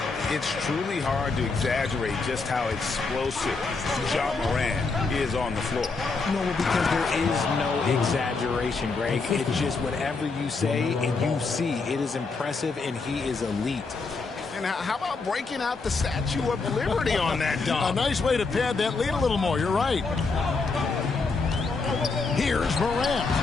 It's truly hard to exaggerate just how explosive Ja Morant is on the floor. No, because there is no exaggeration, Greg. It's just whatever you say and you see. It is impressive, and he is elite. And how about breaking out the Statue of Liberty on that dunk? A nice way to pad that lead a little more. You're right. Here's Morant.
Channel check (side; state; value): right; quieter; 4.2 dB